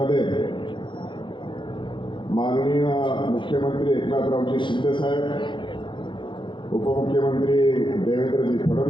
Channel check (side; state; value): right; late; 0.23 ms